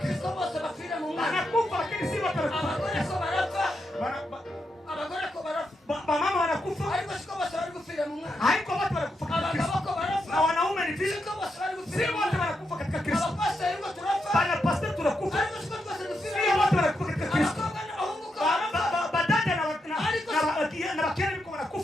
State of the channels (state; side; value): normal; both; correlation 0.83